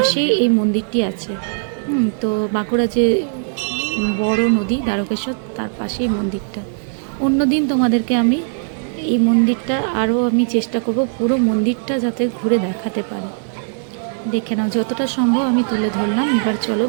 এই মন্দিরটি আছে। তো বাঁকুড়া যে বড় নদী দ্বারকেশ্বর, তার পাশেই মন্দিরটা। অন্যদিন তোমাদেরকে আমি এই মন্দিরটা আরও আমি চেষ্টা করব পুরো মন্দিরটা যাতে ঘুরে দেখাতে পারি। দেখে নাও, যতটা সম্ভব আমি তুলে ধরলাম। এবার চলো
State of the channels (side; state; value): left; silent; 67 dB below the other